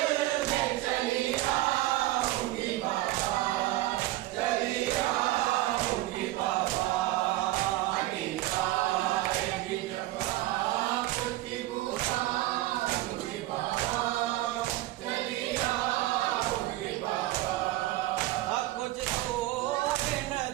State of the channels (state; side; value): quieter; left; 16.8 dB